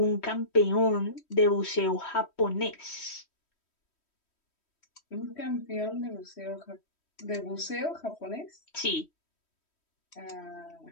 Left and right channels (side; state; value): right; late; 3.1 ms